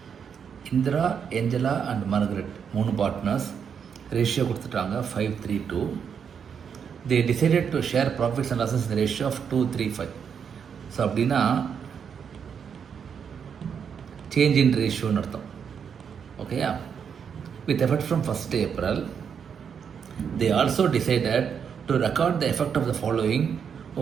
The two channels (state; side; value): quieter; left; 7.2 dB